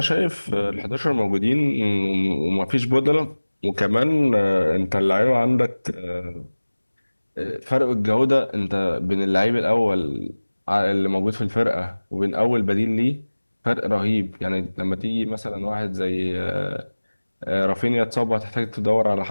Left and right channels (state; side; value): inverted; both; correlation -1.00